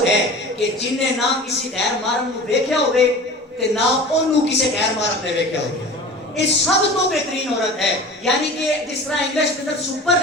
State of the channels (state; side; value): normal; both; correlation 0.38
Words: ہے کہ جن نے نہ کسی غیر محرم کو دیکھا ہوئے تے نہ انہوں کسی غیر محرم نے دیکھا ہوئے. یہ سب تو بہترین عورت ہے. یعنی کہ جس طرح انگلش کے اندر